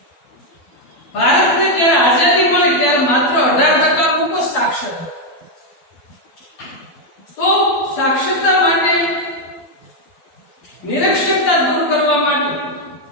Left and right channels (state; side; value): late; right; 12 ms